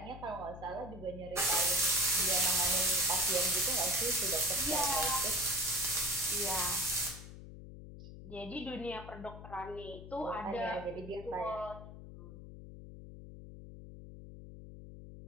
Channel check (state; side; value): noise; left; hum, 13 dB below the sound